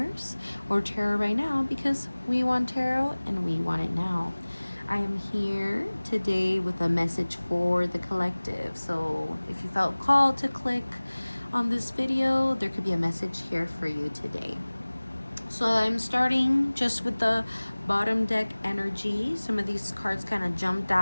or Tarot Right Now because we want tarot and we want it now. I am here today with a message for the collective. So if you felt called to click on this video, there could be a message here for you today. So I'm starting just with the bottom deck energy. Some of these cards kind of jumped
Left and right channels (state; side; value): inverted; both; correlation -1.00